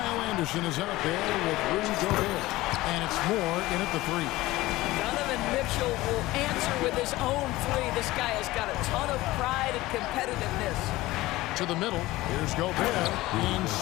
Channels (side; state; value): right; quieter; 18.3 dB